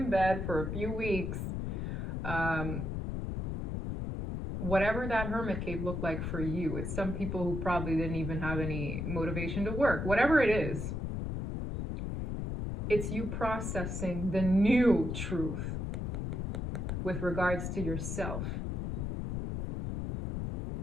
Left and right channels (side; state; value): left; noise; rumble, 2 dB below the sound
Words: bed for a few weeks, whatever that hermit cave looked like for you, it's some people who probably didn't even have any motivation to work, whatever it is, it's you processing the new truth with regards to yourself.